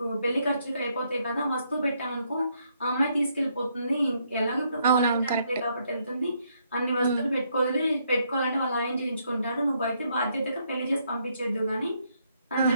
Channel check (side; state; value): both; inverted; correlation -0.73